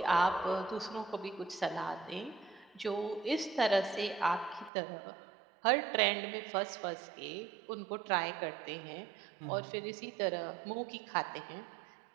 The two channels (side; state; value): left; drops out; at 4.7 s